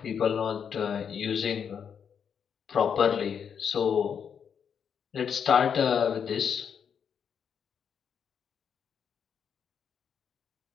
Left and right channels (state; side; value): quieter; right; 7.4 dB